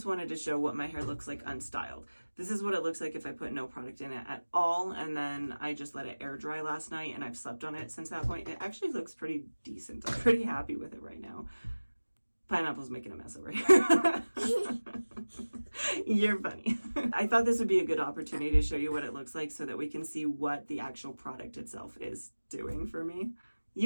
wanted to show what my hair looks like unstyled. This is what it looks like if I put no product in it at all, and then I just let it air dry last night, and I've slept on it since that point. It actually looks pretty decent. I'm pretty happy with it right now. Pineapple's making a mess over here. You're funny. I thought this would be a good opportunity to show you what it looks like so that we can see what the actual product itself is doing for me.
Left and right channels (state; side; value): inverted; both; correlation -1.00